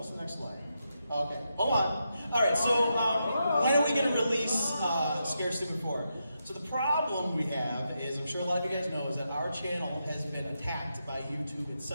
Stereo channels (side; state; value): both; inverted; correlation -0.85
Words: the next slide? Okay, hold on. All right, so when are we gonna release Scared Stupid 4? So the problem we have is, I'm sure a lot of you guys know, is that our channel has been attacked by YouTube